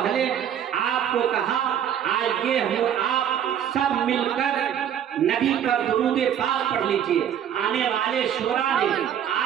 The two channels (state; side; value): quieter; left; 9.5 dB